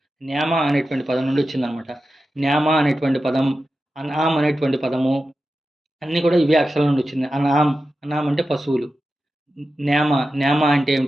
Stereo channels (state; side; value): normal; both; correlation 0.92